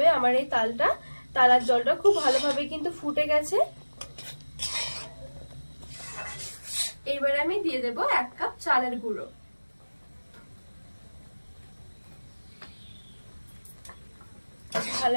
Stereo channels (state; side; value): inverted; both; correlation -1.00